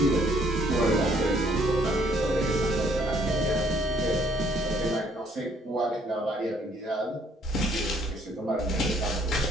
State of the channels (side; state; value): both; normal; correlation 0.64